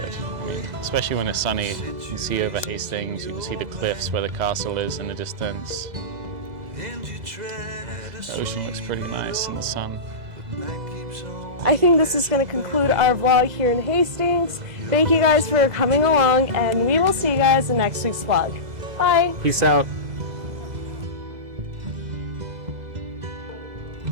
I mean, especially when it's sunny, you can see over Hastings, you can see the cliffs where the castle is in the distance. The ocean looks pretty nice in the sun. I think this is going to conclude our vlog here in Hastings. Thank you guys for coming along, and we will see you guys in next week's vlog. Bye! Peace out.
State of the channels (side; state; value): left; late; 2.0 ms